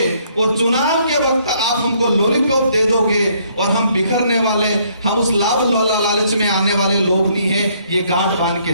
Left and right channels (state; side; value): inverted; both; correlation -0.67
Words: और चुनाव के वक्त आप हमको लॉलीपॉप दे दोगे और हम बिखरने वाले, हम उस लाभ लालच में आने वाले लोग नहीं है। ये गांठ बांध के